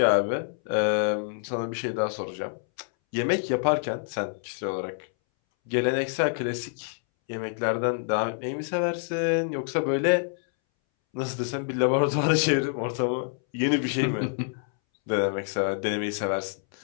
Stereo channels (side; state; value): right; silent; 60 dB below the other